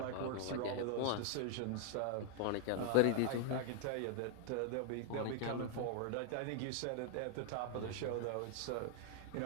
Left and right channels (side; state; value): both; different; correlation 0.00